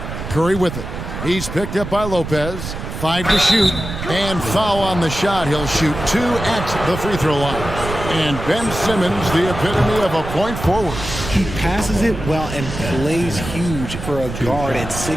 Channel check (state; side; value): noise; right; rumble, 8 dB below the sound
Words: Curry with it. He's picked up by Lopez. 5 to shoot, and foul on the shot. He'll shoot 2 at the free throw line. And Ben Simmons, the epitome of a point forward. He passes it well and plays huge for a guard at